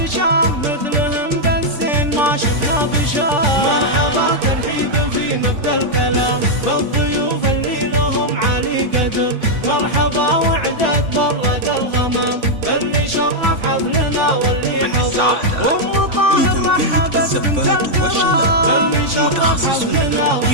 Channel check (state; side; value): late; left; 3.5 ms